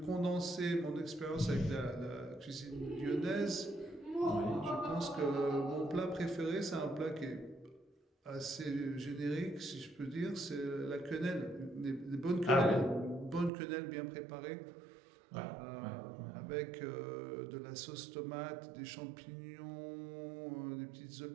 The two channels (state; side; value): drops out; left; at 13.5 s